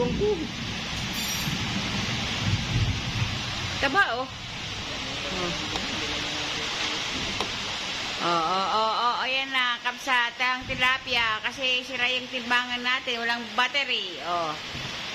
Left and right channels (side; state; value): both; identical; correlation 1.00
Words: 2 guhit. Taba oh. Ayan na, kapsat ang tilapia kasi sira yung timbangan natin, walang battery. Oh.